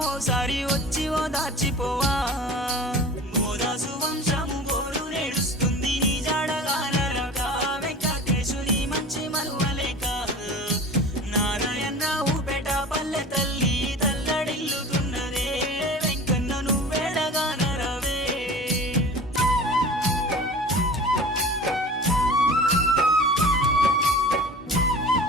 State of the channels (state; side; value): normal; both; correlation 0.39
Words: ఓసారి వచ్చి ఓదార్చిపోవా మోదాసు వంశము గోరు నేడుస్తుంది నీ జాడగానరగా వెంకటేశుని మంచి మరువలేక నారాయణరావు పేట పల్లె తల్లి తల్లడిల్లుతున్నదే వెంకన్న నువ్వేడగానరవే